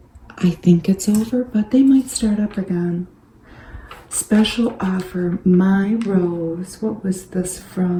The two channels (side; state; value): both; identical; correlation 1.00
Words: I think it's over, but they might start up again. Special offer, My Rose. What was this